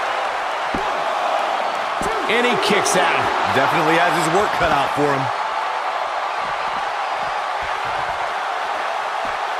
And he kicks out. Definitely has his work cut out for him.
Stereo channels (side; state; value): both; identical; correlation 1.00